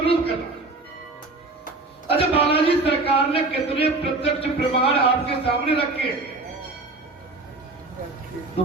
कर रहा हूं। अच्छा, बालाजी सरकार ने कितने प्रत्यक्ष प्रमाण आपके सामने रखे, तो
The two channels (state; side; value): quieter; left; 3.3 dB